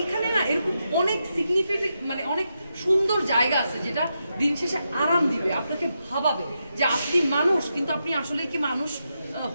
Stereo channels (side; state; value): both; inverted; correlation -0.85